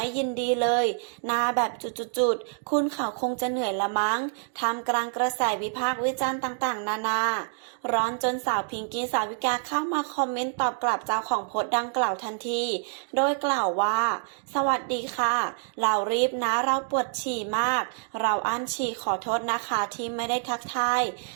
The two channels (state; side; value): silent; left; digital silence